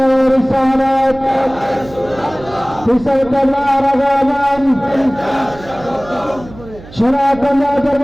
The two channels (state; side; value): noise; right; hum, 18 dB below the sound